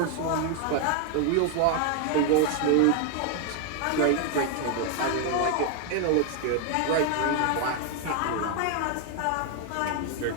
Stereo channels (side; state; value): both; different; correlation 0.00